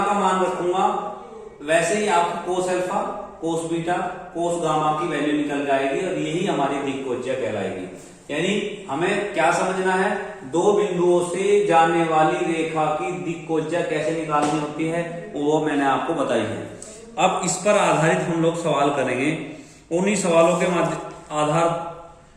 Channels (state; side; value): identical; both; correlation 1.00